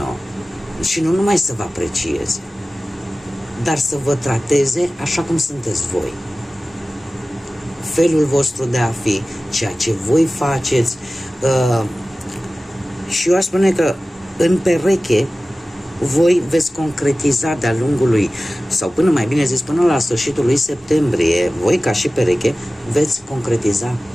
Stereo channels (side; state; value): both; normal; correlation 0.96